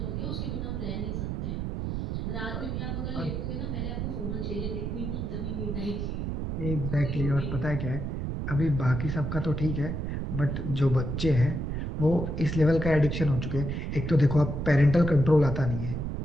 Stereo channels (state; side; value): noise; right; rumble, 3 dB below the sound